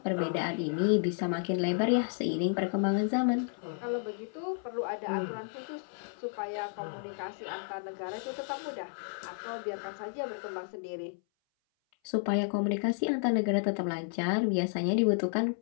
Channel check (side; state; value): right; silent; 56 dB below the other